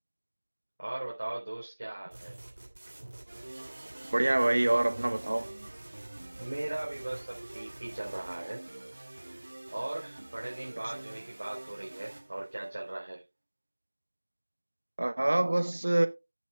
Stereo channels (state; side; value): inverted; both; correlation -1.00